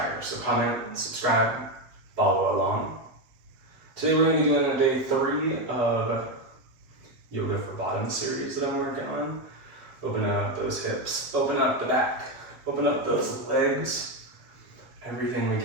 So comment, subscribe, follow along. Today we're going to be doing a day 3 of Yoga for Bottom series that I'm working on. Open up those hips, open up the back, open up those legs, everything we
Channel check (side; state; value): left; late; 7.5 ms